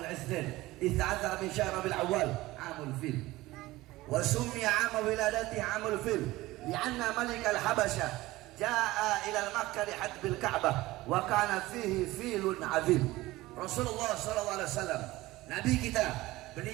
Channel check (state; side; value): quieter; left; 18.5 dB